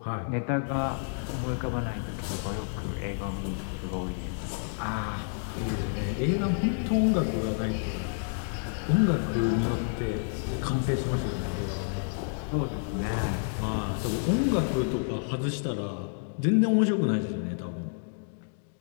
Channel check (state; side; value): silent; right; digital silence